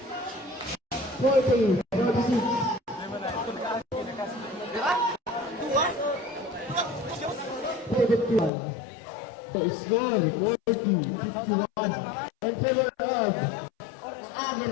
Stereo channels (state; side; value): drops out; right; at 8.5 s